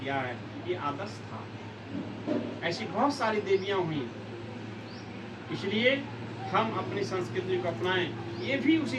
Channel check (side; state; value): both; identical; correlation 1.00